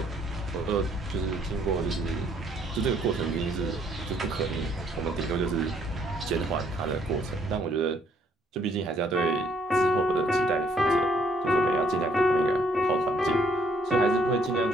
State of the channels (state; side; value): normal; both; correlation 0.66